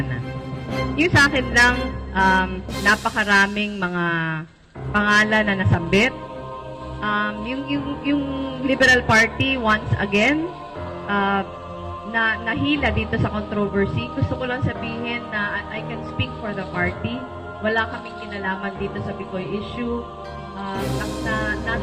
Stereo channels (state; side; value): identical; both; correlation 1.00